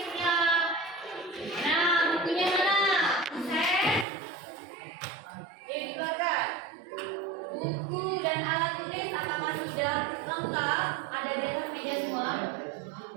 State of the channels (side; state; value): left; drops out; at 4.0 s